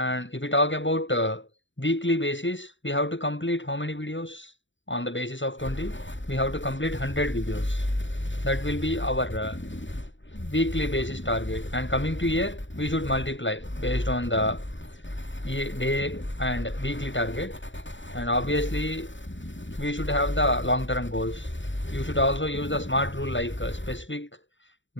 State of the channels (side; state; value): right; late; 0.55 ms